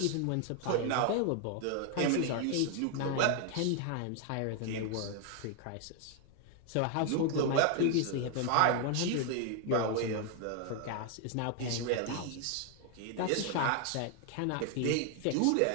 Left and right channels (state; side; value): different; both; correlation 0.00